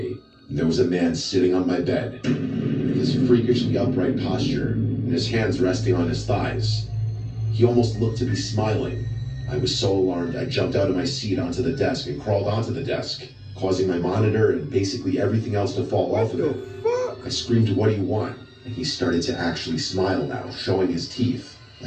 and there was a man sitting on my bed, with his freakishly upright posture, and his hands resting on his thighs. He almost looked to be smiling. I was so alarmed I jumped out of my seat onto the desk and crawled onto the desk, causing my monitor and basically everything else to fall off of it. I screamed, "What do you want?" And he started to actually smile now, showing his teeth,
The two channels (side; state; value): both; identical; correlation 1.00